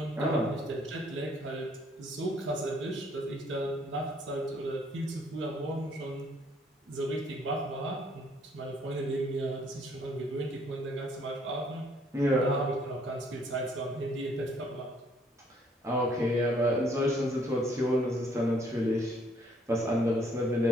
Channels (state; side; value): normal; both; correlation 0.65